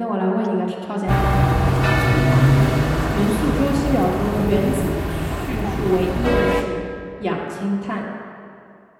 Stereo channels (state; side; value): identical; both; correlation 1.00